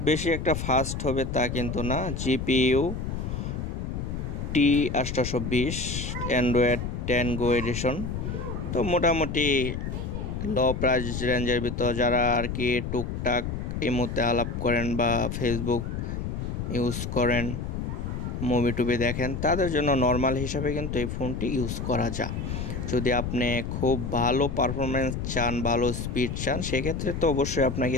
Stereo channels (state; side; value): noise; left; rumble, 4 dB below the sound